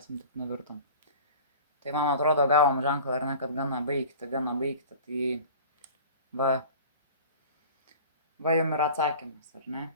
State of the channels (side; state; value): both; inverted; correlation -0.41